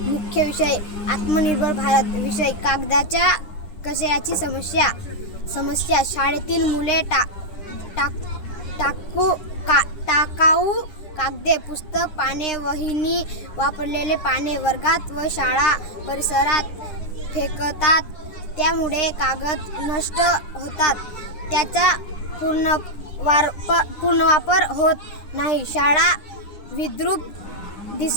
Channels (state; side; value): late; right; 9.9 ms